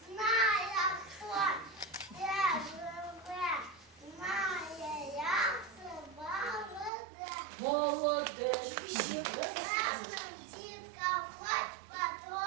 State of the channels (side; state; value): left; drops out; at 6.9 s